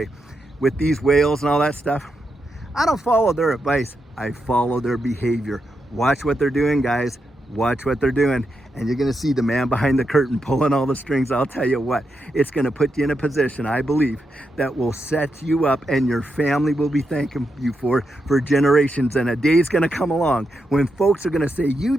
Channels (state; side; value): normal; both; correlation 0.85